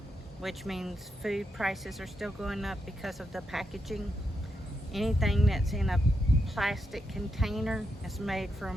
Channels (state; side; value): normal; both; correlation 0.84